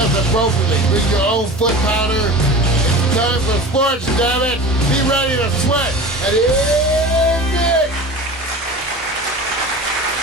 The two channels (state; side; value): normal; both; correlation 0.35